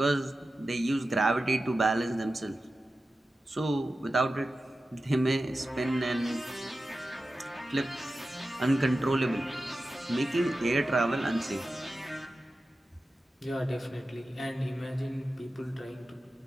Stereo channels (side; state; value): both; normal; correlation 0.93